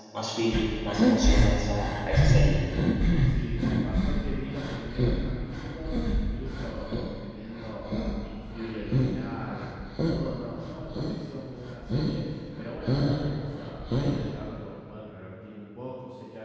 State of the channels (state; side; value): identical; both; correlation 1.00